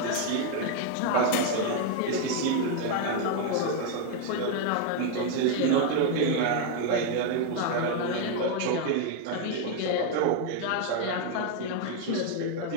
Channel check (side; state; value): both; different; correlation 0.01